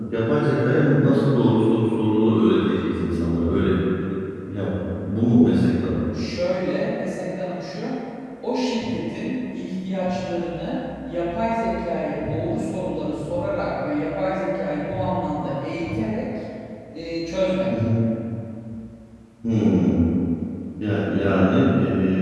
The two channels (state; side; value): identical; both; correlation 1.00